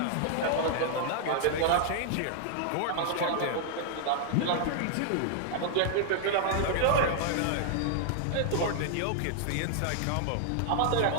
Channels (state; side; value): different; both; correlation -0.01